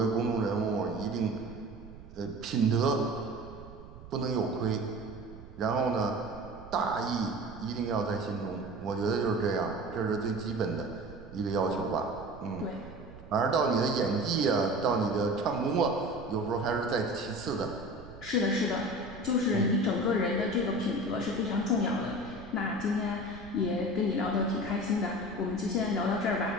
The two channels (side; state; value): right; noise; rumble, 17 dB below the sound